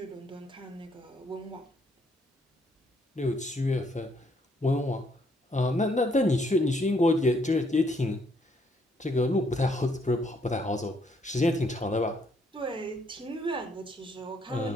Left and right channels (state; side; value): normal; both; correlation 0.70